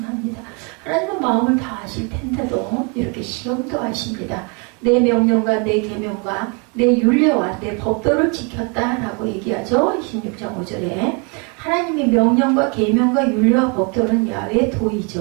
하나님은 마음을 다 아실 텐데도 이렇게 시험도 하십니다. 내 명령과 내 계명과 내 율례와 내 법도를 지켰다라고 얘기하죠. 26장 5절에 하나님의 명령과 계명과 율례와 법도는 야훼의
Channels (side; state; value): left; quieter; 33.7 dB